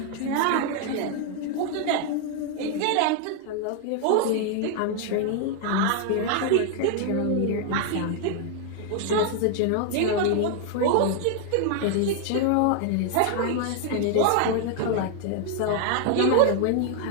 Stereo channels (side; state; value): both; different; correlation 0.00